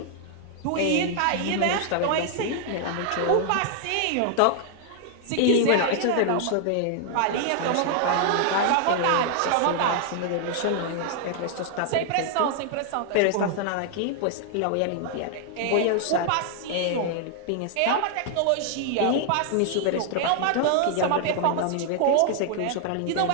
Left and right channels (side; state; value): both; different; correlation 0.00